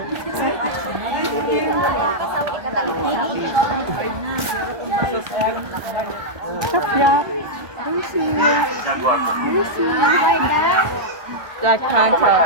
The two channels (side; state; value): left; late; 1.2 ms